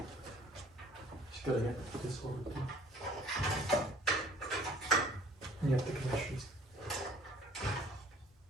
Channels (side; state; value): both; normal; correlation 0.54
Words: Just gotta get this over too. And you have the connections.